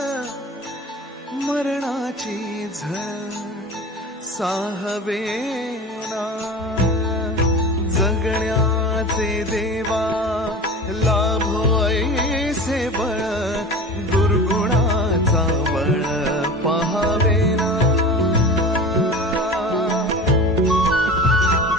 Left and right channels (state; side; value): normal; both; correlation 0.35